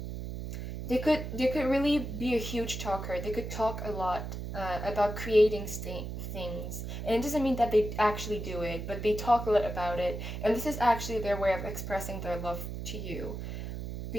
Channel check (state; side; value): noise; right; hum, 6 dB below the sound